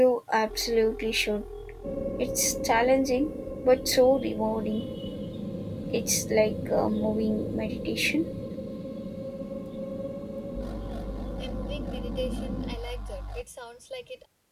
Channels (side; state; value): both; identical; correlation 1.00